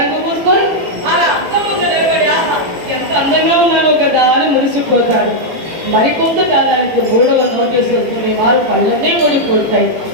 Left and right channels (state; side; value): late; left; 18 ms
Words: పూసుకొని అలా అర్థం ముందు నిలబడి ఆహా ఎంత అందంగా ఉన్నాను కదా అని మురిసిపోతాడు. మరికొంతకాలానికి 3వ నోటీసు వస్తుంది. వారు కళ్ళనే ఊడిపోతాయి.